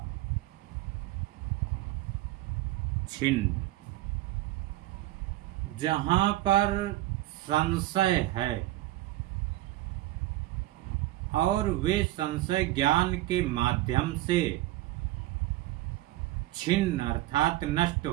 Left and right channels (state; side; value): quieter; left; 16.4 dB